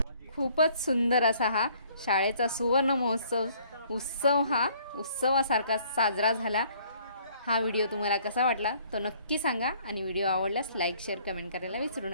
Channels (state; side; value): inverted; both; correlation -0.60